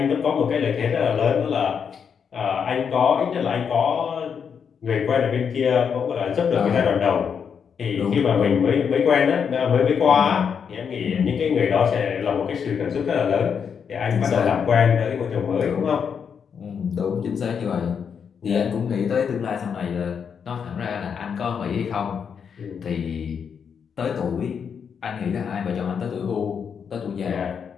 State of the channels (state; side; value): quieter; right; 6.9 dB